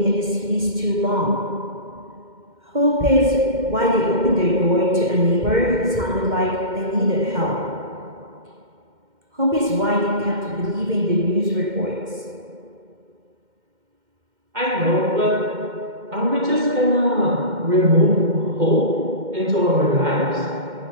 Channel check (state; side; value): late; left; 2.1 ms